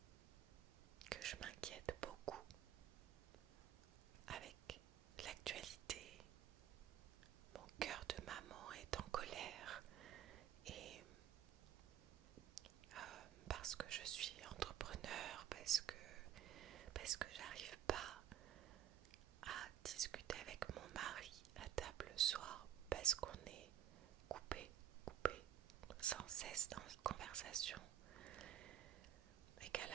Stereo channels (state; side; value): quieter; left; 10.8 dB